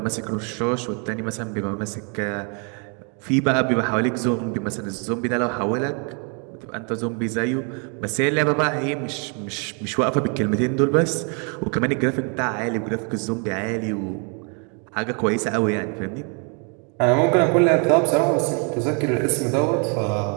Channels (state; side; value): quieter; left; 37.2 dB